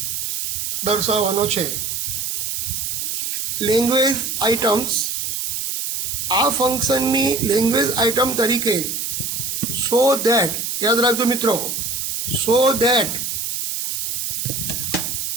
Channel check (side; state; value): right; noise; hiss, 2 dB below the sound